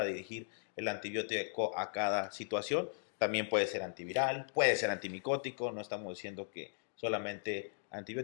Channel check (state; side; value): silent; right; digital silence